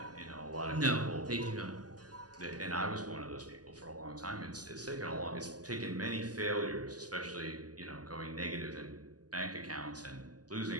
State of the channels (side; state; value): left; late; 0.68 ms